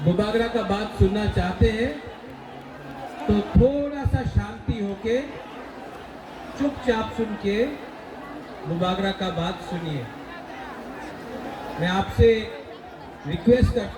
बुबागरा का बात सुनना चाहते हैं तो थोड़ा सा शांति होके चुपचाप सुन के बुबागरा का बात सुनिए। मैं आपसे रिक्वेस्ट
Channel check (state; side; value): identical; both; correlation 1.00